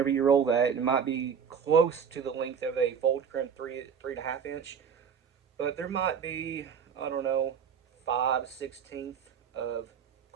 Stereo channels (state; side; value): quieter; left; 7.1 dB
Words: you roll that. It might be close to the length of a fold crimp 3.5 inch. But there might be, I don't know, 5/16 of